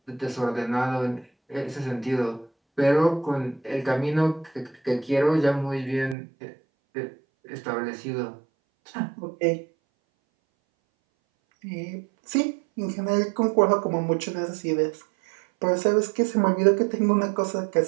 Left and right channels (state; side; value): drops out; left; at 6.2 s